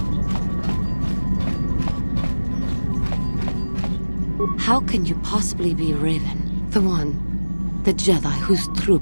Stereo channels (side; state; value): both; inverted; correlation -1.00